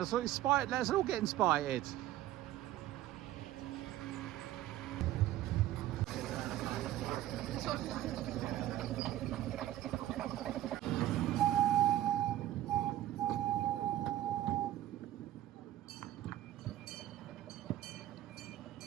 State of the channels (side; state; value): left; quieter; 13.7 dB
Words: all get inspired.